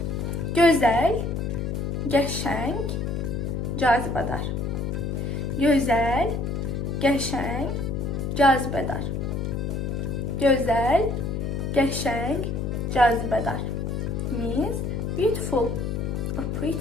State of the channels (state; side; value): noise; left; hum, 2 dB below the sound